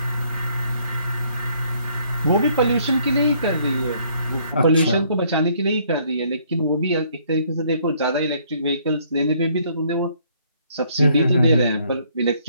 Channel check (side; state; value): both; inverted; correlation -0.65